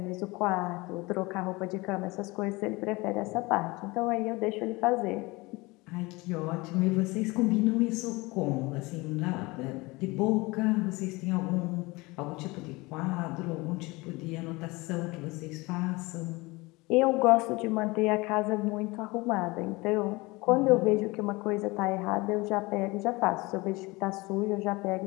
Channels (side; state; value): right; quieter; 23.4 dB